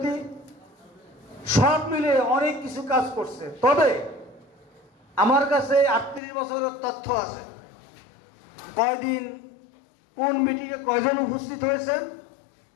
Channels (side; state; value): right; drops out; at 6.2 s